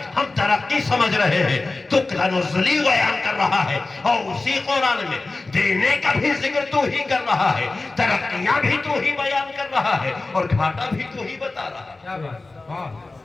ہم ترقی سمجھ رہے ہیں, تو تنزلی بیان کر رہا ہے, اور اسی قرآن میں دینے کا بھی ذکر تو ہی کر رہا ہے, ترقیاں بھی تو ہی بیان کر رہا ہے, اور گھاٹا بھی تو ہی بتا رہا ہے.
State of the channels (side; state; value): right; quieter; 3.4 dB